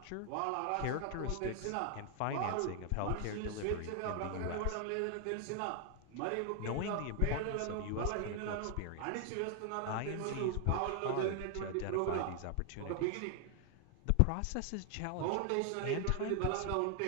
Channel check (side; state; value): both; different; correlation 0.00